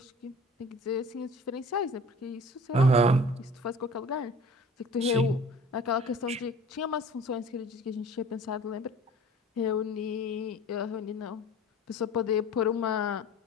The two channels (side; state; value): both; normal; correlation 0.44